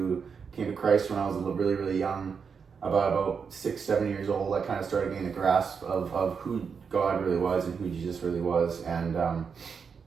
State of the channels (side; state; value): left; quieter; 6.1 dB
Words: Christ when I was really, really young, about 6-7 years old. I kind of started getting a grasp of who God really was and who Jesus really was, and